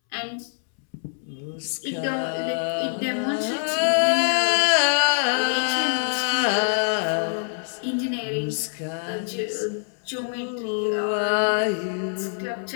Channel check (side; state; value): right; silent; 62 dB below the other